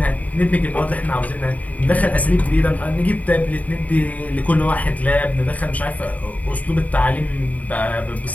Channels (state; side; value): late; right; 0.072 ms